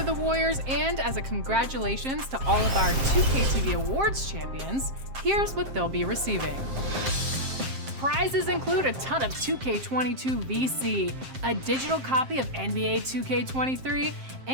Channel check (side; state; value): left; late; 7.5 ms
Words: the Warriors, and as a congratulations to all of our 2K TV Awards champions, here's what they'll be receiving. Prizes include a ton of 2K22 VC, a digital copy of NBA 2K23,